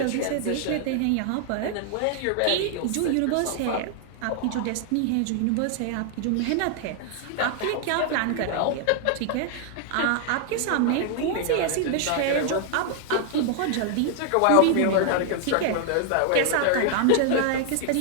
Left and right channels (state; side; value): different; both; correlation 0.00